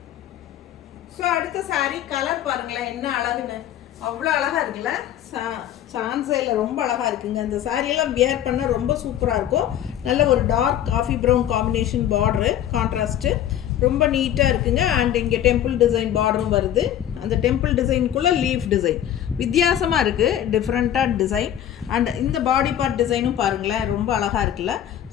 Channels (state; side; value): quieter; right; 11.0 dB